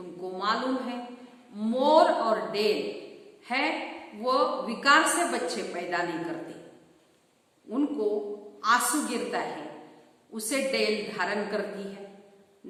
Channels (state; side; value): identical; both; correlation 1.00